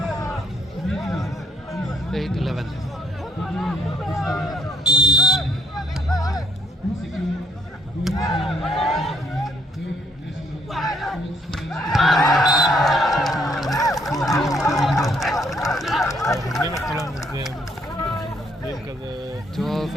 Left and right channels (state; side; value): normal; both; correlation 0.69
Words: אני מתחילה מזה, בין כזה... 12-8.